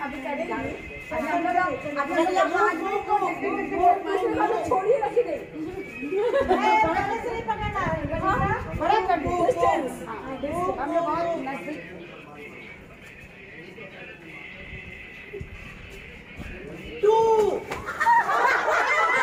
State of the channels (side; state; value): both; identical; correlation 1.00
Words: अभी करेंगे। छोड़िए रखी नहीं से नहीं पकड़ना बड़ा डिस्टेंस हमने बहुत नजदीक।